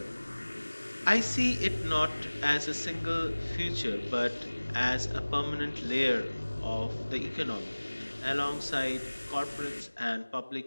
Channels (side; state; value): both; inverted; correlation -1.00